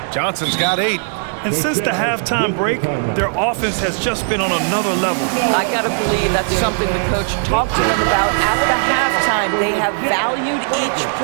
Johnson's got 8. And since the halftime break, their offense has just been on another level. I got to believe that's something the coach talked to them about at the halftime. They have valued each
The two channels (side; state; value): left; silent; digital silence